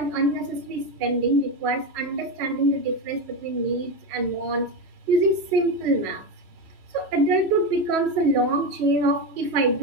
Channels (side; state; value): left; late; 3.1 ms